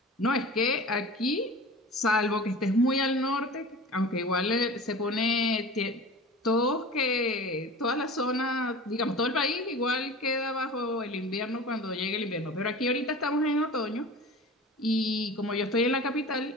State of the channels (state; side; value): normal; both; correlation 0.37